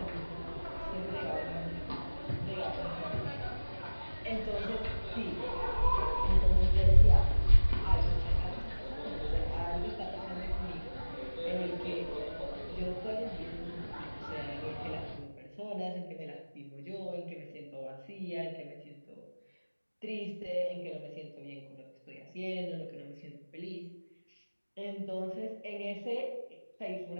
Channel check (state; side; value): inverted; both; correlation -1.00